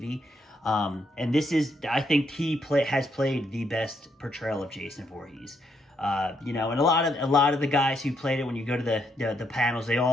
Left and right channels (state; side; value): normal; both; correlation 0.76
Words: And this is, I think he has played the best portrayal of Jason Voorhees. You know, and a lot of the guys who played it, when you go to the panels, they